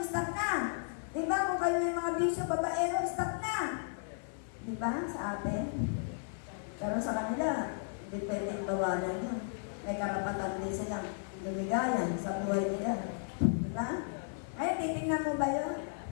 stop na. Diba? Kung kayo may mga bisyo, babaero, stop na. Diba? Sa atin. Pero sa kanila, hindi pwedeng bawalan yun. May karapatan din silang lumigayan sa buhay nila. Diba? Ay, titignan mo ba yun?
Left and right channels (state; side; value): silent; right; 55 dB below the other